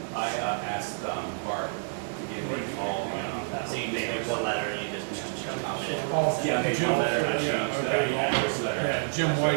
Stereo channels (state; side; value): silent; left; digital silence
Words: I asked Bart to give me all, So you just make one letter and you just comment it. yeah, they Jim, one letter, I changed yeah, this letter. Yeah, Jim